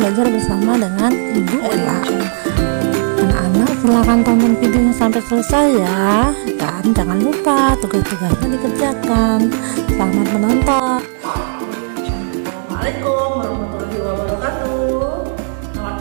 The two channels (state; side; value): silent; left; digital silence